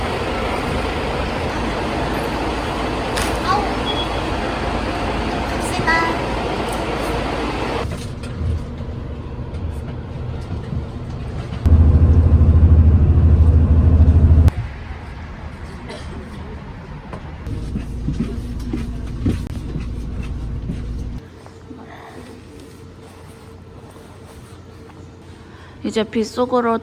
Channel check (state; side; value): identical; both; correlation 1.00